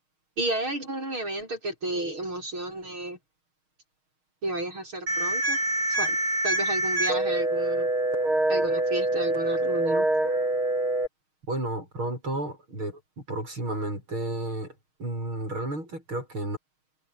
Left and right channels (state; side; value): late; left; 6.4 ms